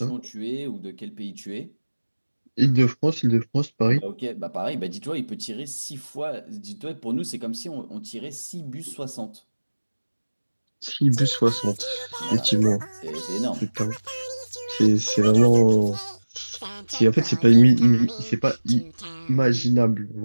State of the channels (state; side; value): inverted; both; correlation -1.00